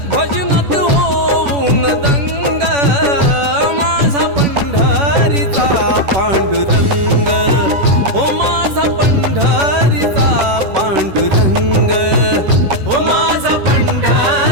भजनात होऊन दंग, माझा पंढरीचा पांडुरंग, हो माझा पंढरीचा पांडुरंग, हो माझा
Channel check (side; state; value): left; late; 10 ms